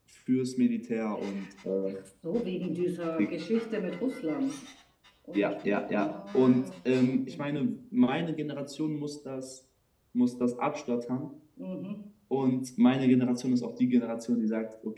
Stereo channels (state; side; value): identical; both; correlation 1.00